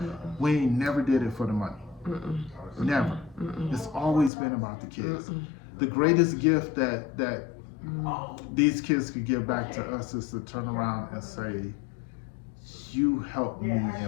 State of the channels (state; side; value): drops out; right; at 4.3 s